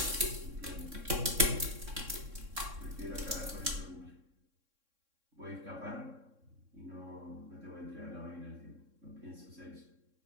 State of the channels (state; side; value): late; left; 3.6 ms